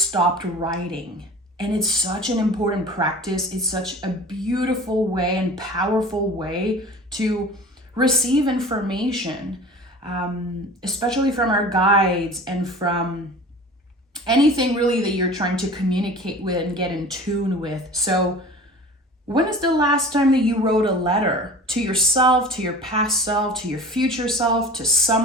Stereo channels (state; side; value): normal; both; correlation 0.40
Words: writing, and it's such an important practice. It's such a beautiful way and powerful way to receive information, especially from our guides and from anything really that you're trying to communicate with and get in tune with. So when is the last time that you wrote a letter to yourself, to your past self, to your future self, to